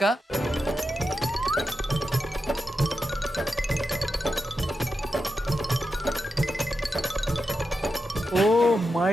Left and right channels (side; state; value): both; normal; correlation 0.89